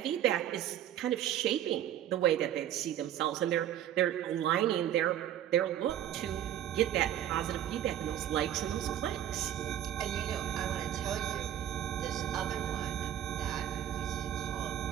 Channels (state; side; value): quieter; left; 11.3 dB